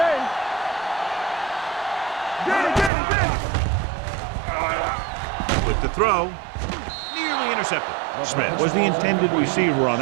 Get it. With the throw, nearly intercepted. Smith was the intended receiver on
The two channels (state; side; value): drops out; left; at 2.9 s